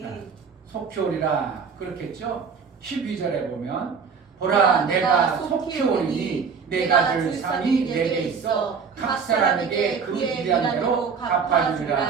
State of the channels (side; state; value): left; quieter; 5.9 dB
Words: 속히 오리라 그렇겠죠. 12절에 보면 보라 내가 속히 오리니 내가 줄 상이 내게 있어 각 사람에게 그의 일한 대로